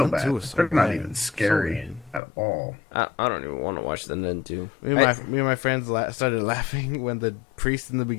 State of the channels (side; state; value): right; drops out; at 2.2 s